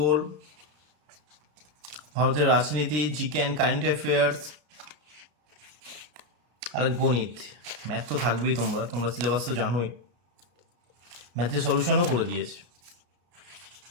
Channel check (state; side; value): late; left; 33 ms